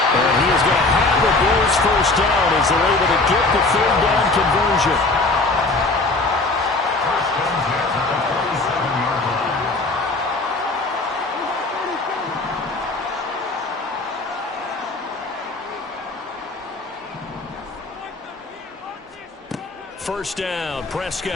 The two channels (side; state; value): right; quieter; 3.3 dB